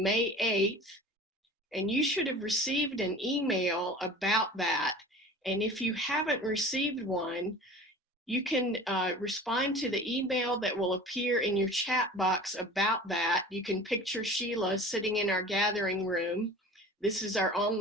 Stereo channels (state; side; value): normal; both; correlation 0.40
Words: May 8th. And you should have received an email about that. And if you haven't received one, you can respond to the email that will appear in your chat box about that. You can picture Sheila sitting in our gathering room. This is our